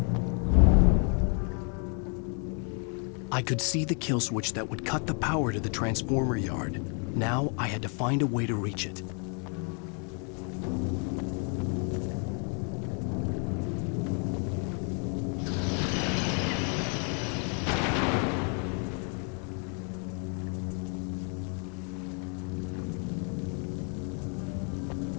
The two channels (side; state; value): right; quieter; 40.0 dB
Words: I could see the kill switch that would cut the power to the transformer yard. Now I had to find a way to reach it.